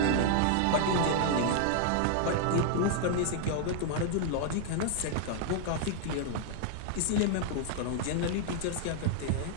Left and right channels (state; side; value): different; both; correlation 0.00